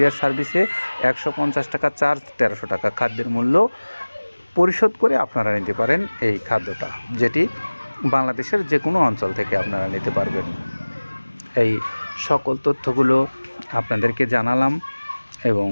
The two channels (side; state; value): both; inverted; correlation -1.00